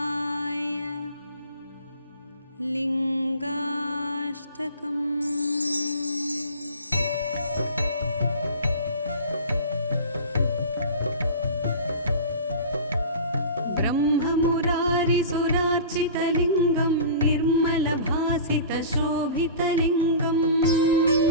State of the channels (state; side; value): inverted; both; correlation -0.37